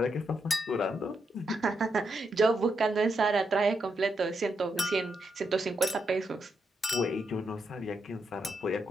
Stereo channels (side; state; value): both; normal; correlation 0.82